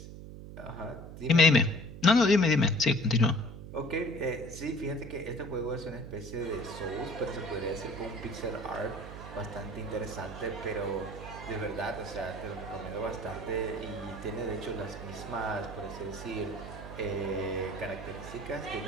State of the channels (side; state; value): right; noise; hum, 12 dB below the sound